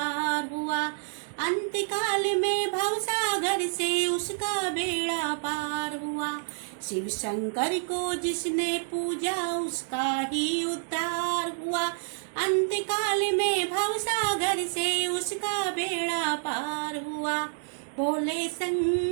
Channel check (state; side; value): silent; left; digital silence